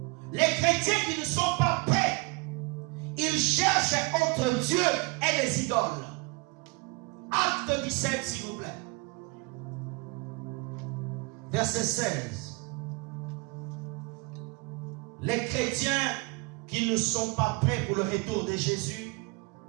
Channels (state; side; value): quieter; left; 27.0 dB